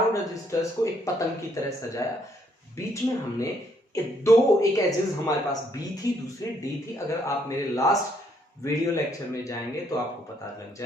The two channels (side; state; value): both; normal; correlation 0.70